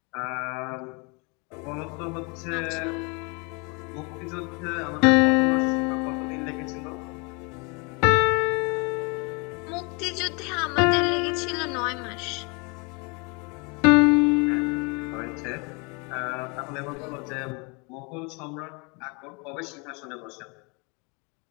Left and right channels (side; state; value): right; quieter; 31.2 dB